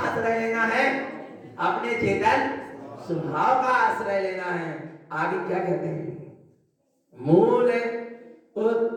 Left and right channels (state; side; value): identical; both; correlation 1.00